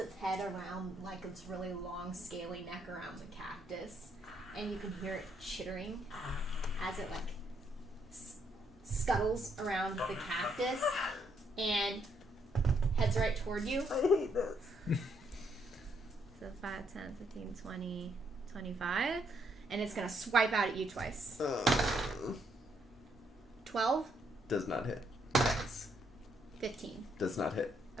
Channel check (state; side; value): normal; both; correlation 0.74